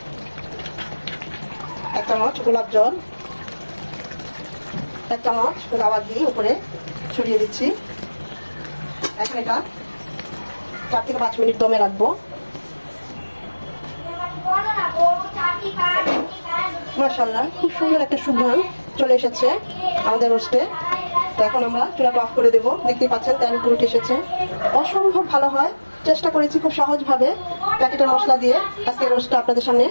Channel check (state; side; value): inverted; both; correlation -1.00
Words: 1 চামচ গোলাপ জল, 1 চামচ গাওয়া ঘি উপরে ছড়িয়ে দিচ্ছি। এখন এটা 4 থেকে 5 মিনিট দমে রাখবো। মাশাআল্লাহ, খুব সুন্দর একটা সুঘ্রাণ চলে এসেছে আমাদের রোস্টে। তো এখন আমরা চুলাটা অফ করে দেবো। দেখতেই পাচ্ছেন তেল পুরো এসেছে, অসম্ভব ভালো হয়। চেষ্টা করেছি খুব সহজভাবে প্যাকেটের মশলা দিয়ে আজকে রোস্টটা আপনাদের সামনে